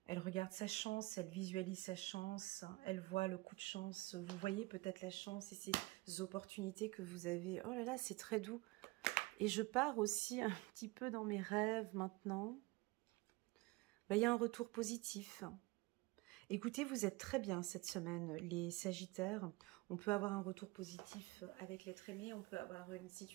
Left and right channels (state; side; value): quieter; left; 22.8 dB